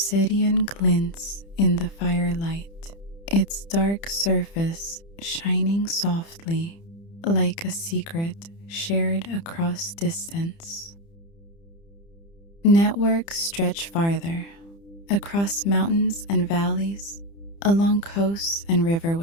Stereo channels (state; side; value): late; right; 30 ms